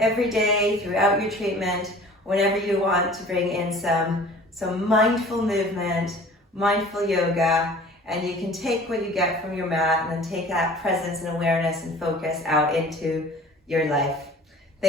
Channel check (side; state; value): both; normal; correlation 0.46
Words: day throughout your treatment, whenever you want to bring in some mindful movement, mindful yoga, and you can take what you get from your mat and then take that presence and awareness and focus out into your life.